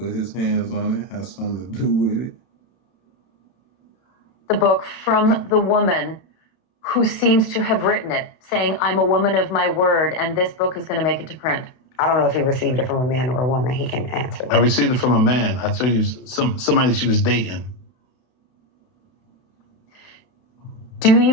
his hands on it, has something to do with it. The book from the woman who seems to have written it, saying, I'm a woman of my word, and this book is going to make it to print. I don't know if he received it from a man or a woman. He can answer that. I received it from a man. I tell you, somebody she was dating. Do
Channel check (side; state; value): right; late; 32 ms